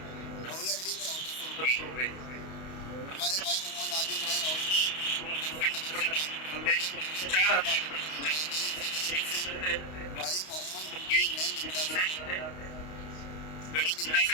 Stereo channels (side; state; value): right; late; 32 ms